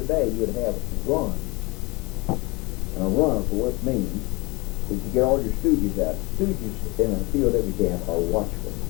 day you'd have runs. And a run, of course, means that you get all your stooges out. Stooges in a POW camp are watchful,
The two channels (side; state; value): right; quieter; 25.3 dB